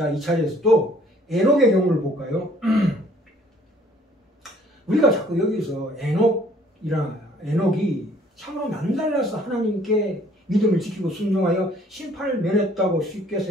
이 차례에서 또 에녹의 경우를 볼까요? 우리가 자꾸 여기서 에녹이 참으로 남달라서 하나님께 믿음을 지키고 순종하여 심판을 면했다고 쉽게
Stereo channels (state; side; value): normal; both; correlation 0.59